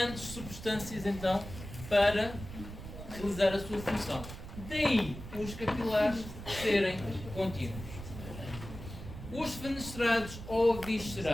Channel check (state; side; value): noise; right; rumble, 11 dB below the sound